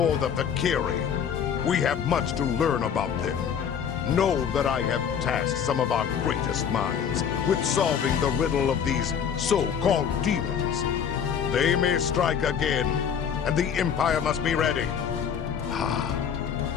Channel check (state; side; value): quieter; right; 7.8 dB